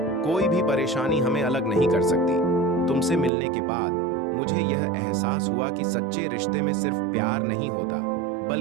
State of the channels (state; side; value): drops out; left; at 3.3 s